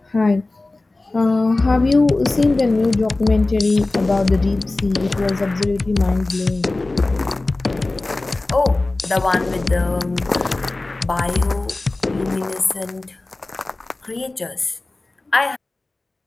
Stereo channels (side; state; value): right; quieter; 3.1 dB